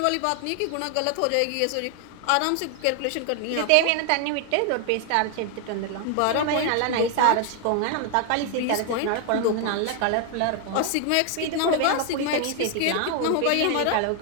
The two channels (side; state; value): both; different; correlation 0.00